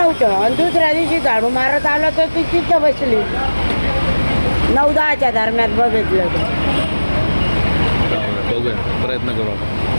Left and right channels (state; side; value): inverted; both; correlation -1.00